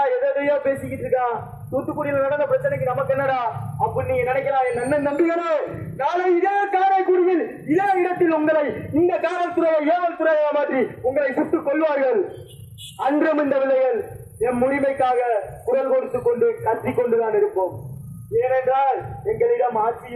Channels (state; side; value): identical; both; correlation 1.00